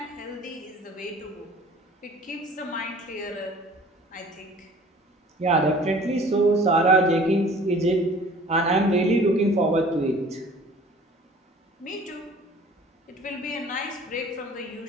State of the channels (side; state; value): both; normal; correlation 0.49